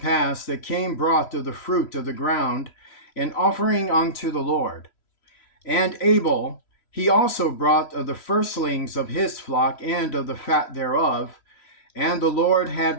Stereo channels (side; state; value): right; late; 3.0 ms